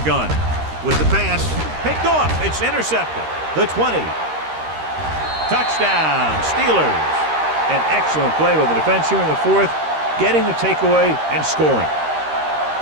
With the pass, picked off. It's intercepted. The 20. Touchdown, Steelers. An excellent play by the defense here in the fourth, getting the takeaway and scoring.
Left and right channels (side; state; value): left; late; 13 ms